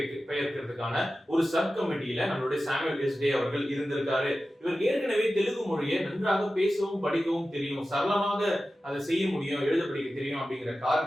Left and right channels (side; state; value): both; normal; correlation 0.94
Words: ஒரு சப் கமிட்டியில நம்மளுடைய சாமுவேல் எஸ் டே அவர்கள் இருந்திருக்காரு. இவருக்கு ஏற்கனவே தெலுங்கு மொழியை நன்றாக பேசவும் படிக்கவும் தெரியும், சரளமாக அதை செய்ய முடியும், எழுத படிக்க தெரியும் அப்படிங்கிற